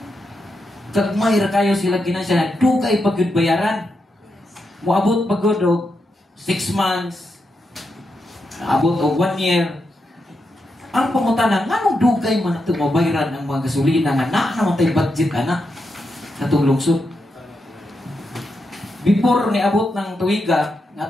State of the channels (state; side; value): normal; both; correlation 0.85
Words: Kagmay ra kayo sila ginansya, dugay pa gyud bayaran. Moabot pa gyud og 6 months. Abot og 1 year. Ang pangutana, nganong dugay man ito mabayaran ang mga gasolina nga na naman tayo budget ana sa itong lungsod. Before ni abot ng tuwiga